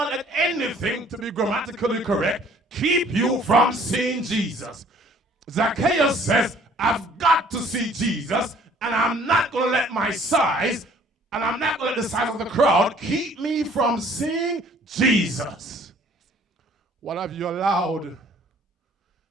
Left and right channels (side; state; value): both; normal; correlation 0.56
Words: let anything, to be grammatically correct, keep you from seeing Jesus. Zacchaeus says, I've got to see Jesus, and I'm not going to let my size, and I'm not going to let the size of the crowd keep me from seeing Jesus. What have you allowed